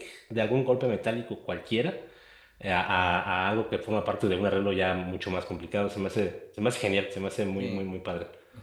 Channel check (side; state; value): both; identical; correlation 1.00